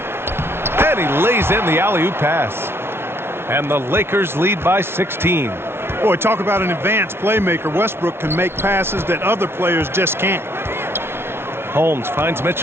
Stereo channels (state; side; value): late; left; 0.12 ms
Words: And he lays in the alley-oop pass. And the Lakers lead by 16. Boy, talk about an advanced playmaker. Westbrook can make passes that other players just can't. Holmes finds